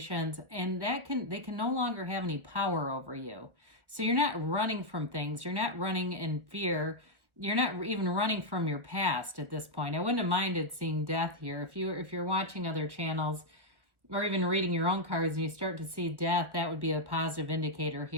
and they can no longer have any power over you. So you're not running from things. You're not running in fear. You're not even running from your past at this point. I wouldn't have minded seeing death here. If you're watching other channels or even reading your own cards and you start to see death, that would be a positive indicator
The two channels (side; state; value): left; late; 1.4 ms